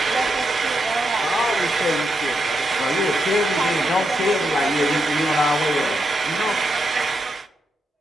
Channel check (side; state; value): both; normal; correlation 0.83